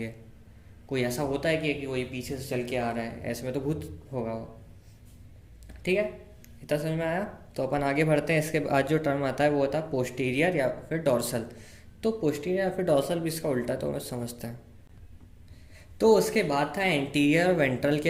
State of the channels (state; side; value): identical; both; correlation 1.00